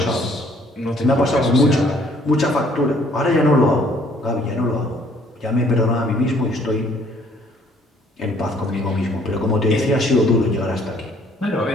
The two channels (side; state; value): both; normal; correlation 0.61